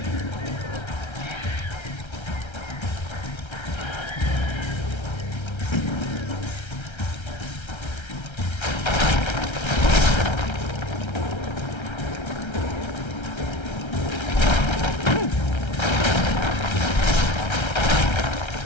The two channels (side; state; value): right; late; 1.3 ms